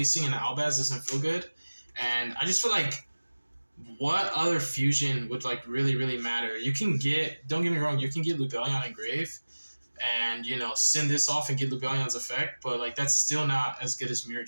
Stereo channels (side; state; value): both; inverted; correlation -1.00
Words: an Albaz doesn't feel good. And I just feel like what other fusion would like really matter? You can get, don't get me wrong, you can get Lubellion and Grave and, you know, send this off and get Lubellion's effect, but like that's still not as good as Mirror